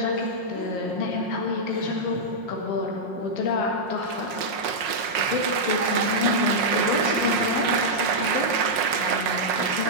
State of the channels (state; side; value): late; left; 5.5 ms